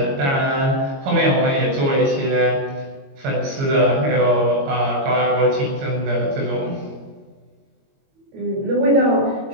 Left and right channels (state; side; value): late; left; 22 ms